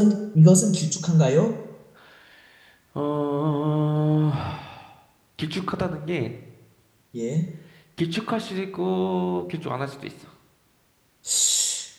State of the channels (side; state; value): both; identical; correlation 1.00